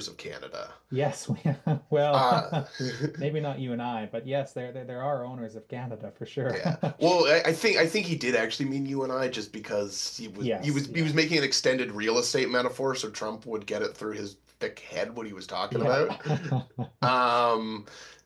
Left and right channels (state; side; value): identical; both; correlation 1.00